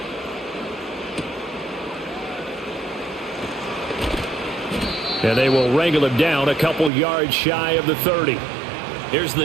And they will wrangle him down a couple yards shy of the 30. Here's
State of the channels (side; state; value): left; drops out; at 6.9 s